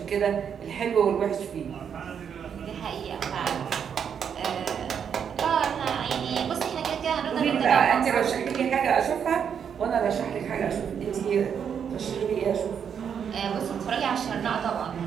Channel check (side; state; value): left; quieter; 7.7 dB